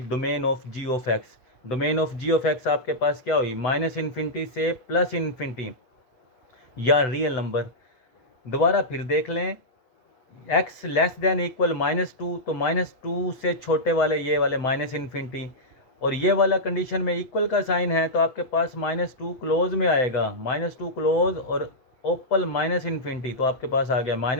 domain of g of x. Domain of g of x आपके पास क्या हुई, -∞ से +∞, या रियल नंबर। दोबारा फिर देख लें, x लेस देन इक्वल -2, तो -2 से छोटे वाले ये वाले -∞, और ये वाला कंडीशन में इक्वल का साइन है तो आपके पास -2 क्लोज में आएगा, -2 क्लोज और ओपन -∞, तो आपके पास आ गया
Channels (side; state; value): right; late; 8.3 ms